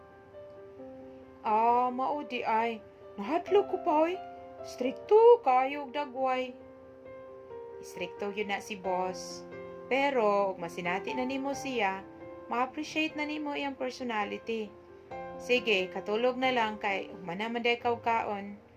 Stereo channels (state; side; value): identical; both; correlation 1.00